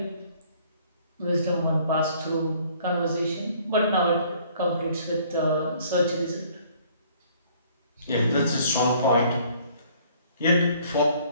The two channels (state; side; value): inverted; both; correlation -0.59